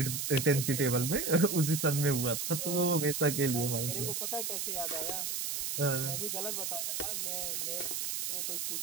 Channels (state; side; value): noise; right; hiss, 2 dB below the sound